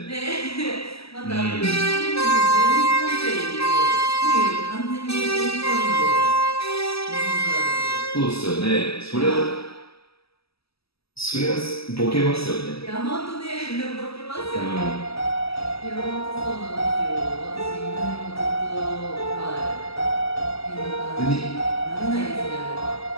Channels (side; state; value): right; late; 0.77 ms